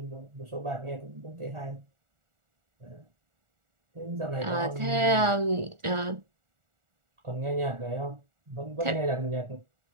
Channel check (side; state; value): left; late; 1.4 ms